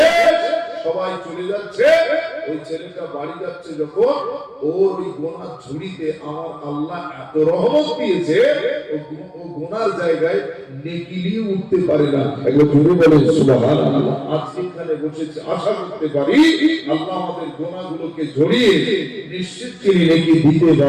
সবাই চলে যাচ্ছে, ওই ছেলেটা বাড়ি যাচ্ছে, যখন ওর ওই গোনা ঝুড়িতে আমার আল্লাহ এত রহমত দিয়েছে, ও গোনার জায়গায় নেকি নিয়ে উঠতে পারে না। একবার জোরে বলেন সুবহানাল্লাহ। আজকে এখানে বসে আশা করতে পারি আল্লাহ আমাদের গোনাগুলোকে ঝরিয়ে নিশ্চিত তিনি নেকি দিতে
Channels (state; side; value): identical; both; correlation 1.00